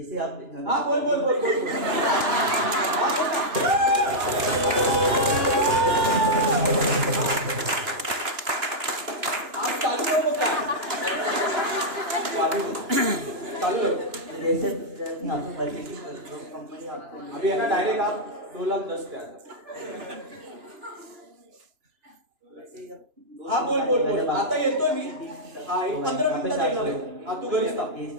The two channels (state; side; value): late; left; 2.9 ms